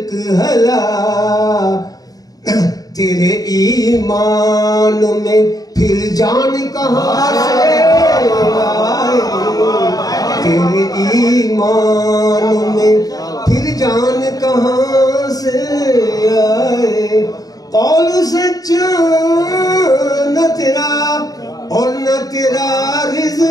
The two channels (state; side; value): late; right; 0.18 ms